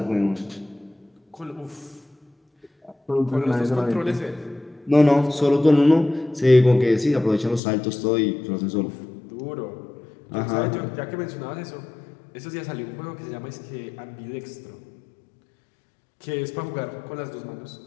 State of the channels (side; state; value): right; drops out; at 7.6 s